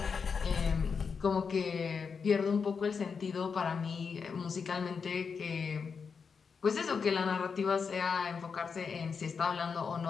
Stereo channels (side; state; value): right; quieter; 5.7 dB